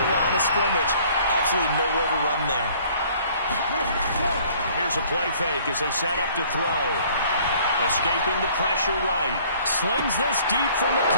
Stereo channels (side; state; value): both; inverted; correlation -0.56